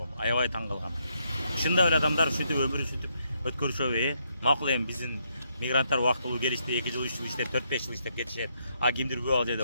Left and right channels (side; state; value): both; inverted; correlation -0.76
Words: аябай таң калгам. Ушундай эле адамдар ушинтип өмүрүн ушинтип өткөрүшөбү? Макул эми биздин мигранттар убактылуу келишти, 2 жыл 3 жыл иштеп, 4-5 жыл иштеп кетишет. А кимдир көп ал жерде